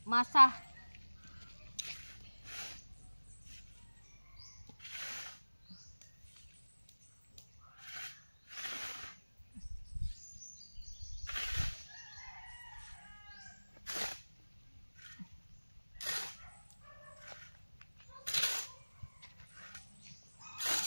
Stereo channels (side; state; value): both; inverted; correlation -1.00